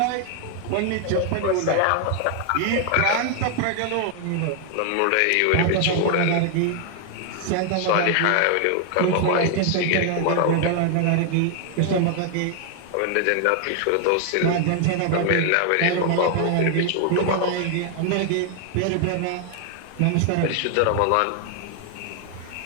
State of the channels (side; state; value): both; different; correlation 0.00